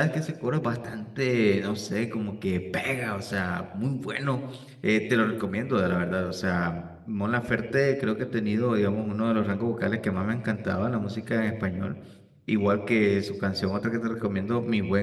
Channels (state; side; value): identical; both; correlation 1.00